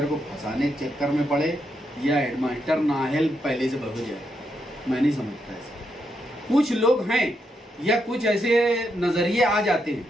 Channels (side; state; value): both; normal; correlation 0.81